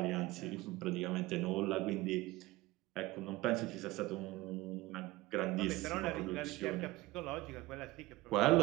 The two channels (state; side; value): quieter; left; 19.2 dB